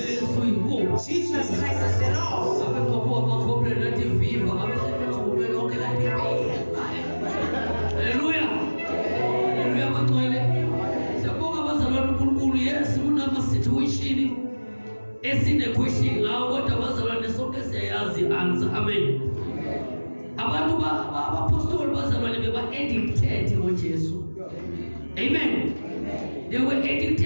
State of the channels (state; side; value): inverted; both; correlation -1.00